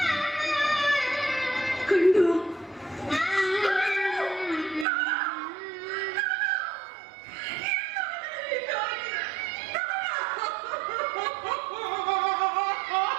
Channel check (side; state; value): left; drops out; at 4.9 s